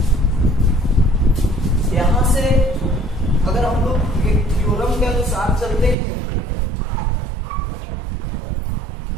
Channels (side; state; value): left; drops out; at 6.0 s